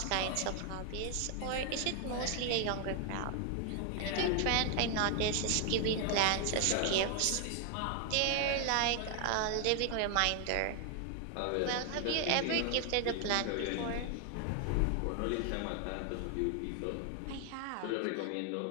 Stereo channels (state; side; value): different; both; correlation 0.00